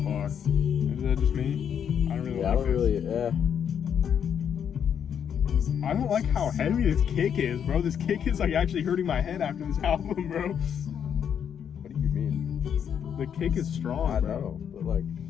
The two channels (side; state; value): right; quieter; 8.2 dB